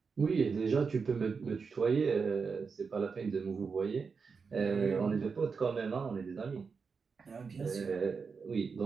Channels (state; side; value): quieter; left; 5.3 dB